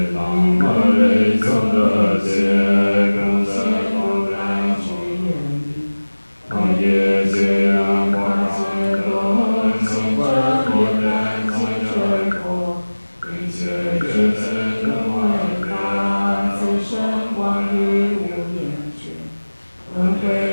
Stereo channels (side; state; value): both; inverted; correlation -1.00